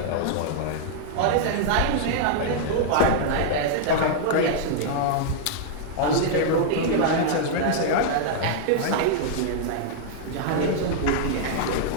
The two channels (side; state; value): both; different; correlation -0.01